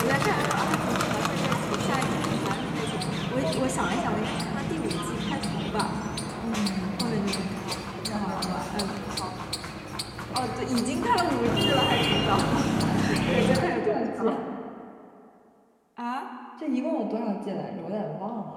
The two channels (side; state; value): both; identical; correlation 1.00